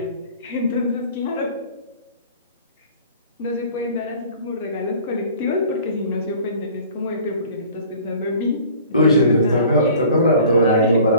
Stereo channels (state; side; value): inverted; both; correlation -0.48